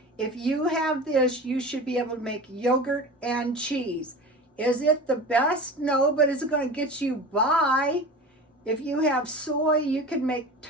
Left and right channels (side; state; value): both; normal; correlation 0.33